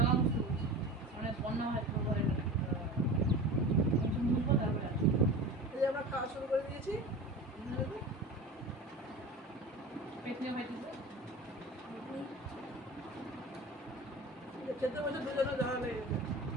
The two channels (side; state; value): both; normal; correlation 0.33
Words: আমরা খাওয়া শুরু করে দিয়েছি। খেতে বসে দুজনে ঝাড়া লেগে গেছে।